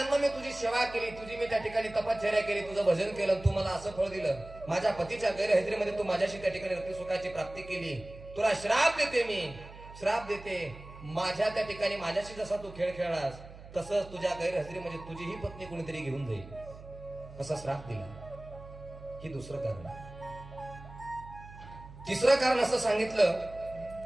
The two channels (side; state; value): right; noise; hum, 17 dB below the sound